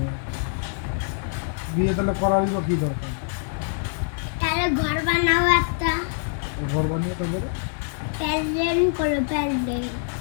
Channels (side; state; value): right; silent; 62 dB below the other